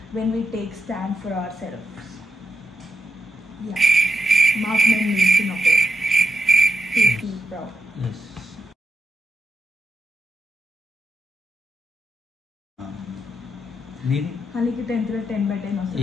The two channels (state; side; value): normal; both; correlation 0.84